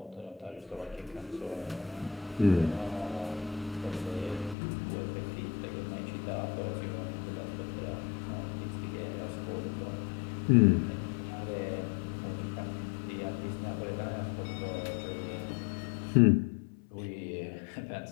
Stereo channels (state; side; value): drops out; right; at 4.5 s